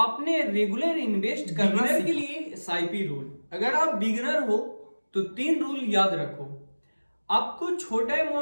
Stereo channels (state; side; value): inverted; both; correlation -1.00